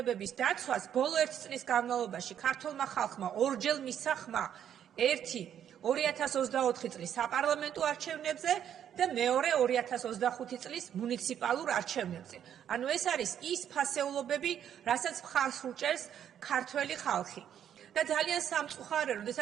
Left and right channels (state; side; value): quieter; left; 9.6 dB